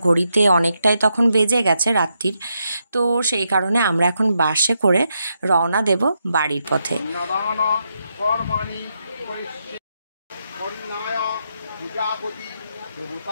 ঘড়িতে অনেকটাই তখন বেজে গেছে রাত্রির। তো সেই কারণে আমরা এখন বাসে করে রওনা দেব বাড়ির পথে।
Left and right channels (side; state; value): both; inverted; correlation -0.82